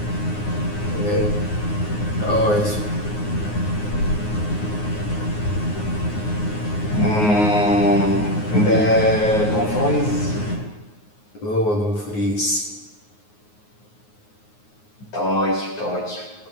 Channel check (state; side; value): late; right; 9.5 ms